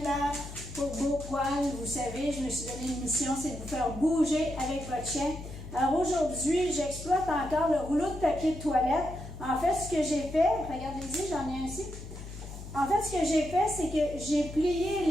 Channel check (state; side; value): noise; left; hum, 11 dB below the sound